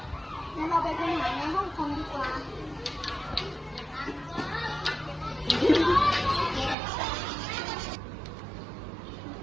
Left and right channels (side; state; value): left; drops out; at 6.8 s